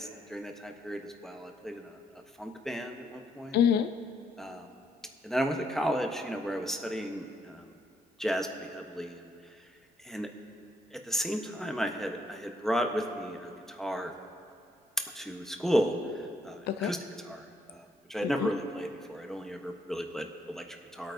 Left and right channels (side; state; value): both; normal; correlation 0.73